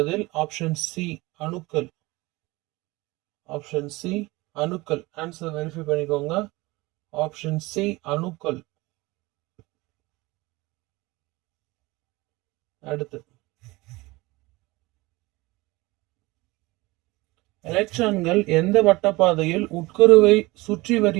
ஆப்ஷன் சி, அணுக்கள். ஆப்ஷன் சி, அணுக்கள். ஆன்சர் வெரிஃபை பண்ணிக்கோங்க. ஆப்ஷன் சி, அணுக்கள். அடுத்து, எலக்ட்ரான்கள் எந்த வட்டப்பாதையில் உட்கருவை சுற்றி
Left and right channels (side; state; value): left; quieter; 21.8 dB